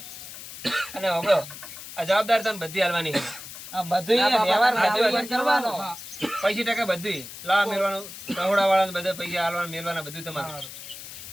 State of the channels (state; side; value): noise; left; hiss, 12 dB below the sound